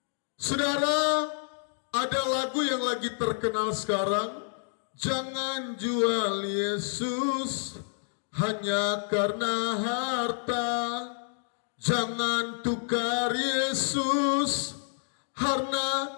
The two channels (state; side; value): silent; right; digital silence